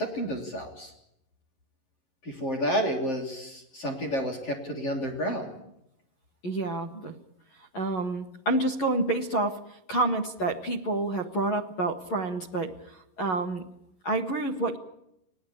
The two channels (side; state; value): right; late; 11 ms